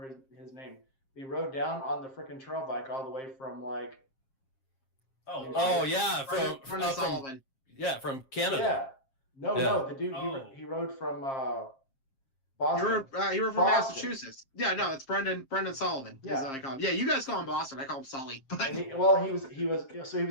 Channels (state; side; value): late; right; 7.5 ms